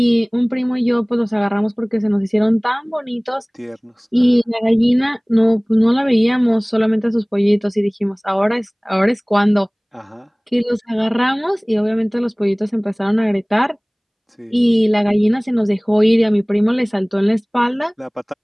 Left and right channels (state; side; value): identical; both; correlation 1.00